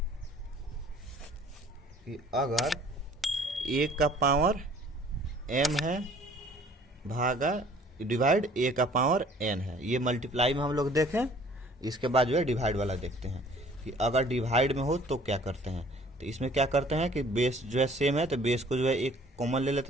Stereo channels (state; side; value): normal; both; correlation 0.54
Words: कि अगर a का पावर m है भागा डिवाइड a का पावर n है, ये मल्टीप्लाई में हम लोग देखें। इसके बाद जो है डिवाइड वाला देखते हैं कि अगर डिवाइड में हो तो क्या करते हैं। तो इसमें क्या करते हैं कि बेस जो है सेम है तो बेस को जो है एक कॉमन ले